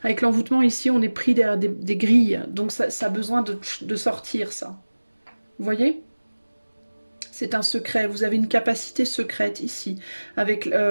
Avec l'envoûtement ici, on est pris derrière des grilles, donc ça a besoin de sortir ça. Vous voyez? C'est un secret, vous avez une capacité secrète ici, avec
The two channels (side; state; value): both; inverted; correlation -1.00